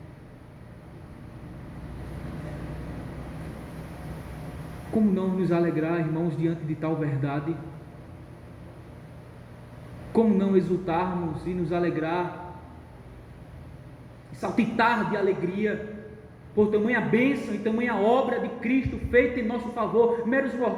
como não nos alegrar, irmãos, diante de tal verdade? Como não exultarmos e nos alegrar, saltitar de alegria por tamanha bênção e tamanha obra de Cristo feita em nosso favor, meros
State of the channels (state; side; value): identical; both; correlation 1.00